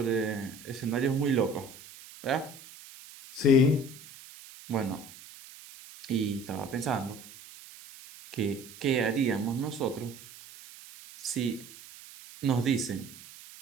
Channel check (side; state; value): right; noise; hiss, 18 dB below the sound